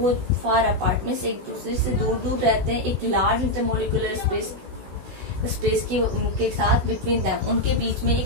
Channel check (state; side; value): late; left; 16 ms